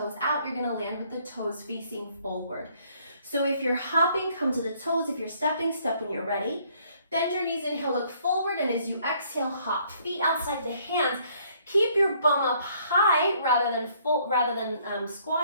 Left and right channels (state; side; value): inverted; both; correlation -0.64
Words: out, you're gonna land with the toes facing forward. So if you're hopping, come to the toes. If you're stepping, step when you're ready. Bend your knees, inhale, look forward, and as you exhale, hop. Feet outside the hands. Keep your bum up high rather than